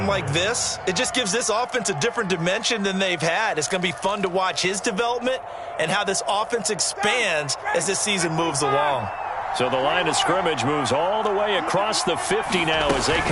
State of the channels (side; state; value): both; identical; correlation 1.00